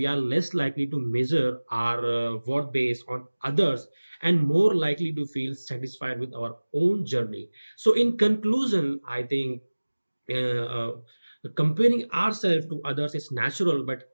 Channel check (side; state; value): both; inverted; correlation -1.00